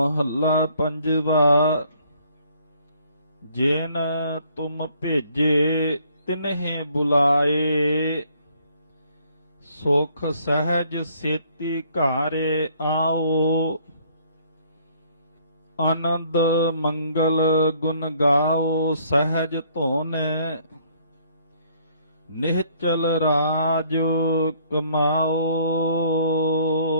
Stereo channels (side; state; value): both; inverted; correlation -0.63